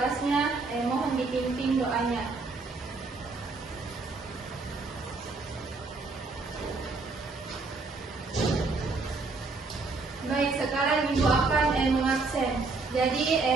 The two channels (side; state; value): left; quieter; 3.8 dB